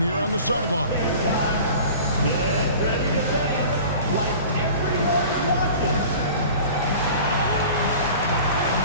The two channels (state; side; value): inverted; both; correlation -0.41